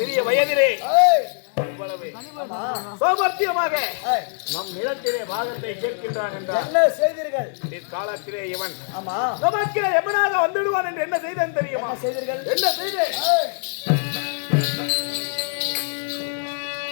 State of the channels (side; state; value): right; silent; digital silence